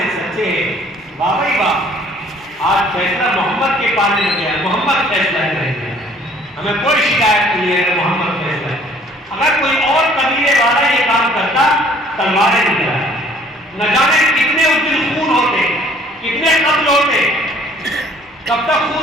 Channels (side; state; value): both; normal; correlation 0.57